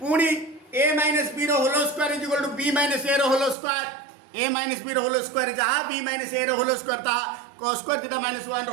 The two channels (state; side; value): drops out; left; at 3.6 s